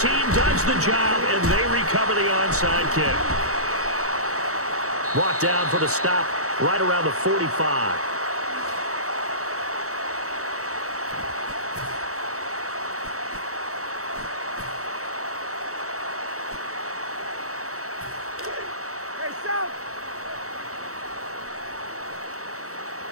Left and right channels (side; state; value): left; late; 0.65 ms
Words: does the job, and they recover the onside kick. Brought down for the stop right around the 45.